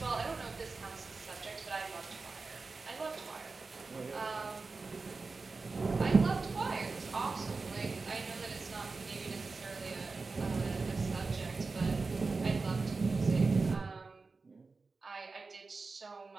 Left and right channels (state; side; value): quieter; left; 4.1 dB